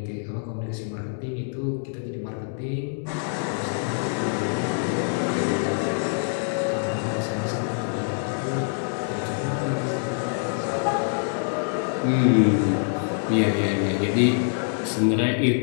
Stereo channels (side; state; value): right; silent; 62 dB below the other